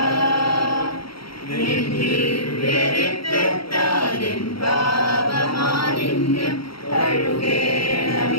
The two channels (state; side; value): late; right; 0.74 ms